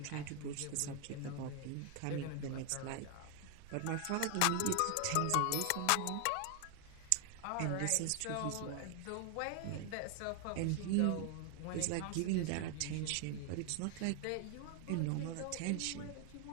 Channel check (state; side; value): different; both; correlation 0.00